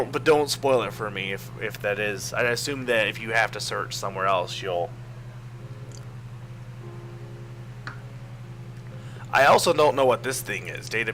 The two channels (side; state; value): both; identical; correlation 1.00